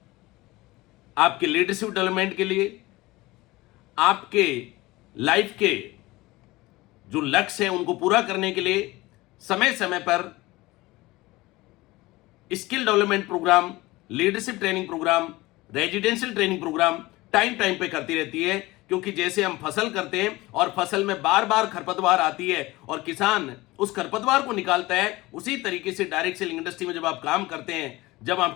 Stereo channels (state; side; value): quieter; right; 20.1 dB